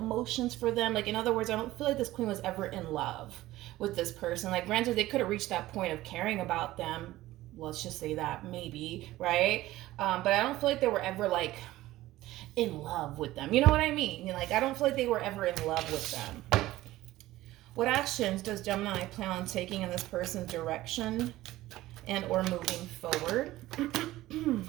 for them. Like, in other words, I don't feel like this queen was ever in love with this person. Like, granted, they could have reached that point of caring about them, let's just say that, maybe, right? But I don't feel like they were ever like in love with them. You know what I mean? Like, I don't feel like they were ever in love with them. What actions does Gemini plan on taking in this person's direction and or moving forward?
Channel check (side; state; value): left; quieter; 16.4 dB